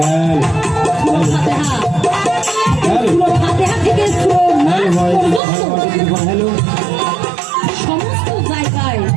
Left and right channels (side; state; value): left; drops out; at 5.4 s